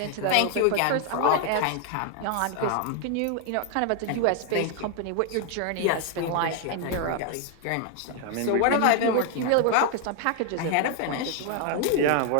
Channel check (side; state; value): both; different; correlation 0.00